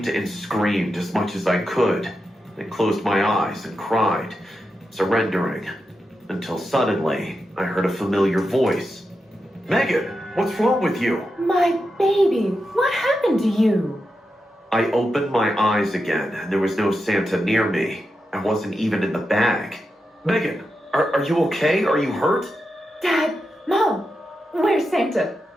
and screamed as much as I could, then closed my eyes and cried, surrendering, until suddenly I heard a familiar voice. Megan, what's wrong with you? My baby, what happened to you? I opened my eyes again, and there was no Santa near me. I wasn't even in the bag. Megan, are you okay? Are you hurt? Dad, Mom, where's Santa?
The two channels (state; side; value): normal; both; correlation 0.88